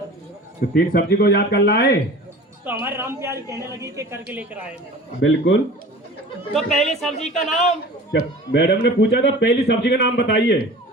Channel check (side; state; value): both; normal; correlation 0.41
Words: तो 3 सब्जी को याद कर लाए? तो हमारे राम प्यारी कहने लगी कि करके लेकर आए मैडम। बिल्कुल। तो पहली सब्जी का नाम जब मैडम ने पूछा था पहली सब्जी का नाम बताइए।